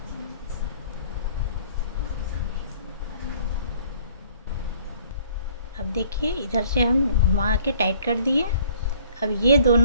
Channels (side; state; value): both; inverted; correlation -0.57